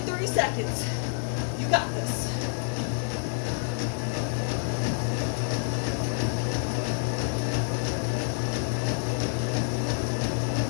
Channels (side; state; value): right; silent; 59 dB below the other